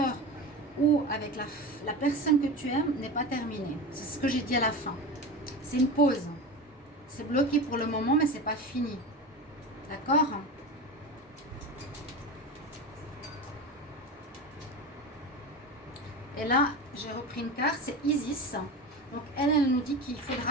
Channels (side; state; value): both; normal; correlation 0.27